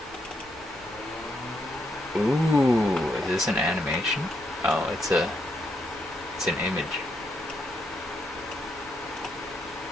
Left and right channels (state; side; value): normal; both; correlation 0.78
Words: Ooh, is this an animation? Oh, it's an image.